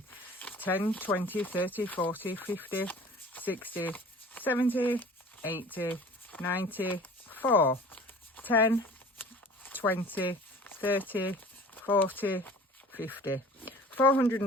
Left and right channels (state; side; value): normal; both; correlation 0.45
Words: 10, 20, 30, 40, 50, 60, 70, 80, 94, 10, 20, 30, 40, 50.